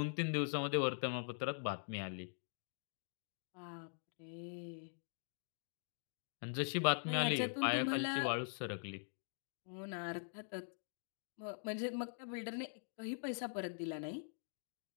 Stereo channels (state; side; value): silent; right; digital silence